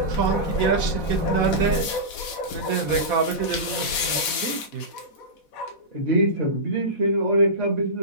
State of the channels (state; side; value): late; right; 4.1 ms